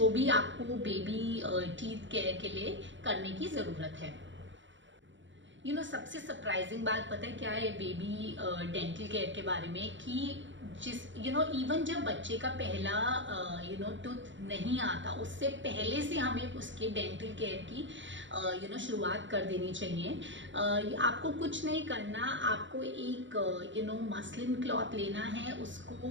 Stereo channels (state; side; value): late; left; 0.54 ms